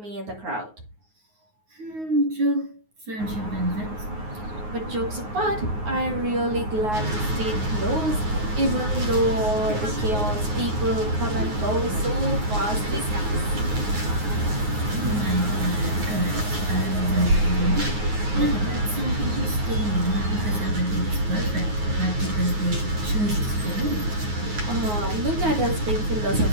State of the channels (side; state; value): left; late; 9.5 ms